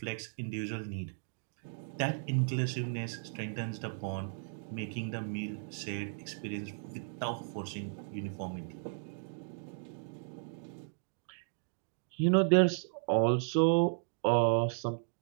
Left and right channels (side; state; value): left; silent; digital silence